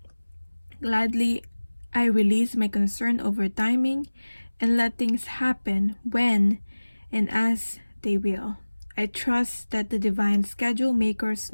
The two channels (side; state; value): both; inverted; correlation -1.00